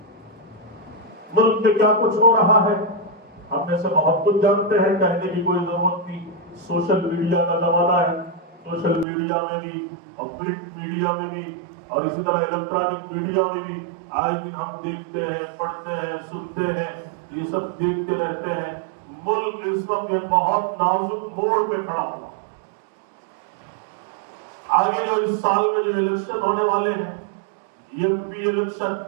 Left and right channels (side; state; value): left; drops out; at 9.1 s